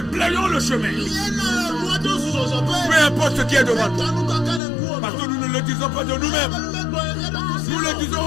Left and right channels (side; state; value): right; drops out; at 4.6 s